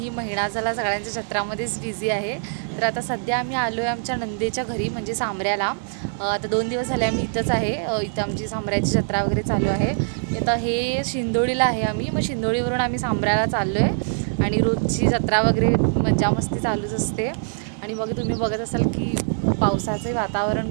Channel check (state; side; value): silent; left; digital silence